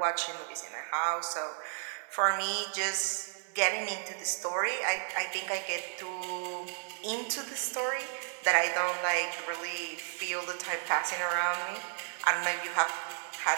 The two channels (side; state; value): left; silent; 56 dB below the other